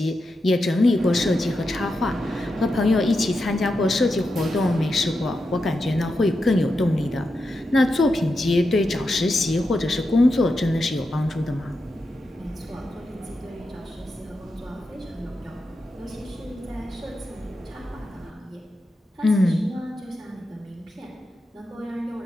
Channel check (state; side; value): normal; both; correlation 0.88